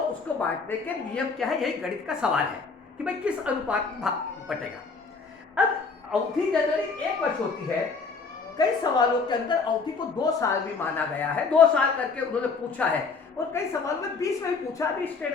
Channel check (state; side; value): quieter; right; 4.7 dB